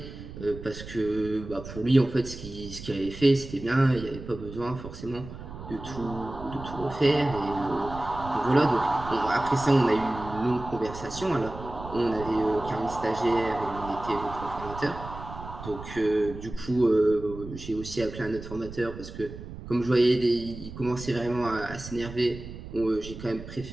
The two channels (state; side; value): noise; right; rumble, 12 dB below the sound